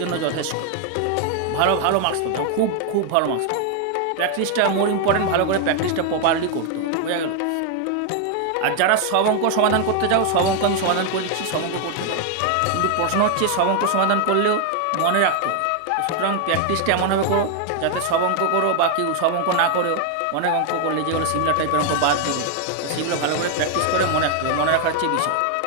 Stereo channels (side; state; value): both; different; correlation 0.00